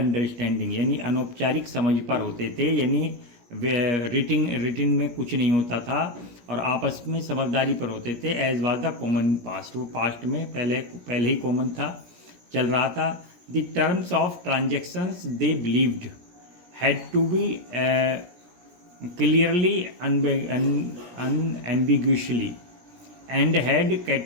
यानी अनौपचारिक समझ पर होते थे, यानी रिटिन में कुछ नहीं होता था और आपस में समझदारी पर होते थे। As was the common past, वो पास्ट में पहले ही कॉमन था, चल रहा था। The terms of transactions they believed had to be clearly unambiguously and had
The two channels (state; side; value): late; left; 17 ms